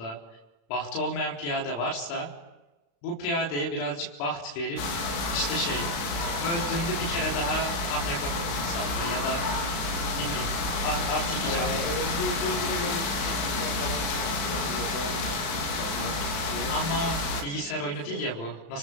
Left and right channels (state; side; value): late; right; 36 ms